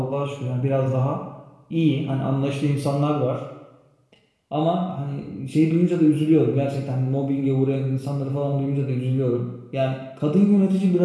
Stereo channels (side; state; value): both; identical; correlation 1.00